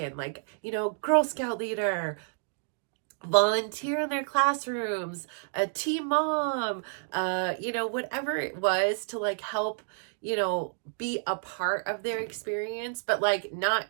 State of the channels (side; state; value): left; silent; digital silence